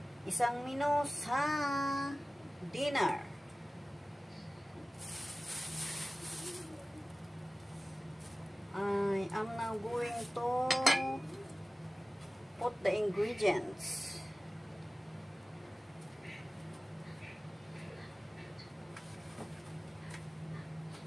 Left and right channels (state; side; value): normal; both; correlation 0.97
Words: Isang menu sa dinner. I am now going to put the ingredients.